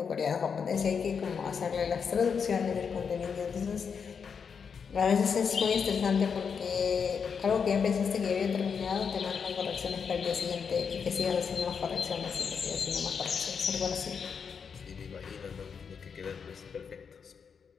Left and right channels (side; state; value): right; quieter; 6.3 dB